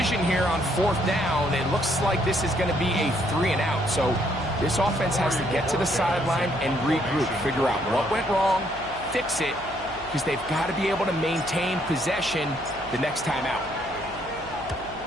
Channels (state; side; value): noise; right; hum, 19 dB below the sound